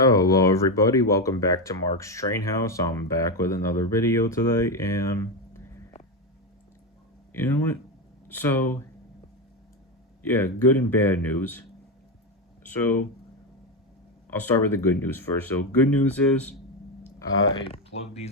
everybody, welcome back to Mark's Train House. I'm back with another video today, and you know what? So, yeah, good and bad news. So, I'll start with the good news first. So, good news is I plugged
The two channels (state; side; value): normal; both; correlation 0.11